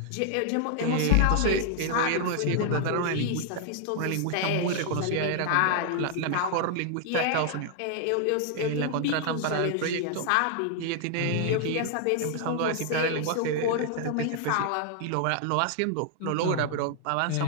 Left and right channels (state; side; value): different; both; correlation 0.00